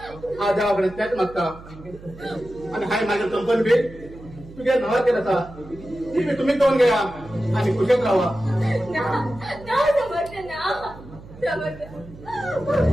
हा देवाकडे त्याच मागता आणि हाय माझ्या कंपनी बी तुझ्या नावा केला ती बी तुम्ही दोन घ्या आणि कुशल राहा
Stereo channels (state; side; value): noise; right; hum, 18 dB below the sound